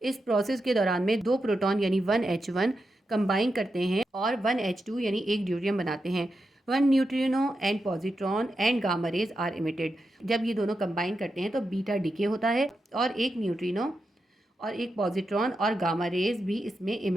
इस प्रोसेस के दौरान में 2 प्रोटॉन यानी 1H1 कंबाइन करते हैं और 1H2 यानी एक ड्यूट्रियम बनाते हैं। 1 neutrino and positron and gamma rays are emitted. जब ये दोनों कंबाइन करते हैं तो बीटा डीके होता है और एक न्यूट्रिनो और एक पॉजिट्रॉन और गामा रेज भी इसमें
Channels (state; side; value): normal; both; correlation 0.87